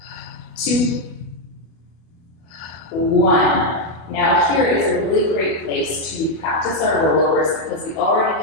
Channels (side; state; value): right; late; 25 ms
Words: 2, 1. Now here is a really great place to practice our rollovers because we